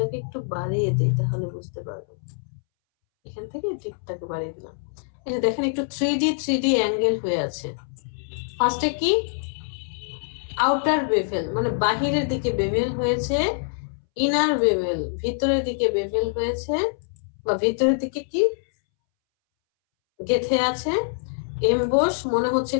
একটু বাড়িয়ে দিই তাহলে বুঝতে পারবেন। এখান থেকে ডিপটাকে বাড়িয়ে দিলাম, এই যে দেখেন একটু 3D অ্যাঙ্গেল হয়ে আছে। ফার্স্টে কি আউটার বেভেল মানে বাহিরের দিকে বেভেল হয়েছে, ইনার বেভেল ভিতরের দিকে বেভেল হয়েছে, বা ভিতরের দিকে কি গেঁথে আছে। এমবোস মনে হচ্ছে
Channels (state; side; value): silent; right; 62 dB below the other